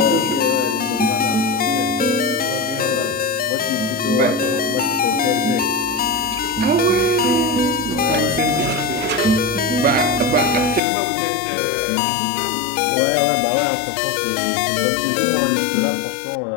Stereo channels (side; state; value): right; drops out; at 10.8 s